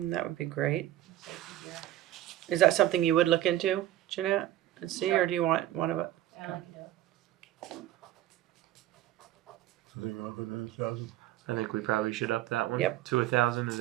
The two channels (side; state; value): left; quieter; 13.8 dB